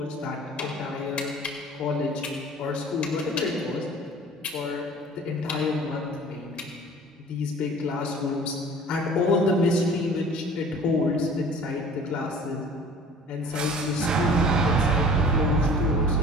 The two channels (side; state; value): both; normal; correlation 0.45